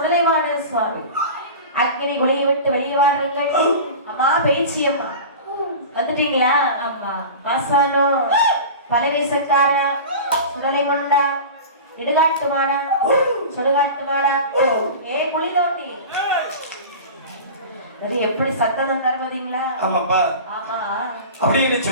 சுவாமி அக்கினி குளியை விட்டு வெளியே வாருங்கள். அம்மா பேச்சி அம்மா வந்துட்டீங்களா? ஆமா. மாசானோ பலவேசக்காரா, சுடலை கொண்டா, இடுகாட்டு மாடா, சுடுகாட்டு மாடா, ஏ குளி தோண்டி எப்படி சத்தம் தருவதீங்களா? ஆமாப்பா. ஆமா. அப்படின்னு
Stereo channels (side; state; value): both; inverted; correlation -0.33